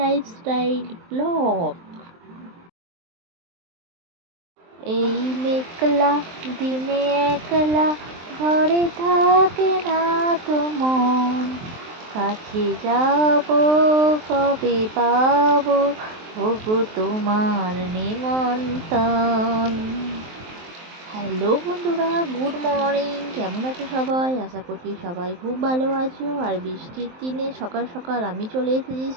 Blog. এই মেঘলা দিনে একলা ঘরে থাকে না তো মন, কাছে যাব কবে পাবো ওগো তোমার নিমন্ত্রণ। হ্যালো বন্ধুরা, গুড মর্নিং। কেমন আছো সবাই? আশা করছি সবাই খুব ভালো আছো। আর বৃষ্টির দিনে সকাল সকাল আমি চলে এসেছি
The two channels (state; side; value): late; left; 23 ms